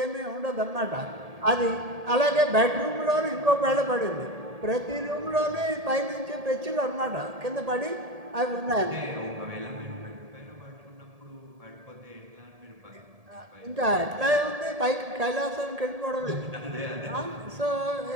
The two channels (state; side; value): late; left; 1.8 ms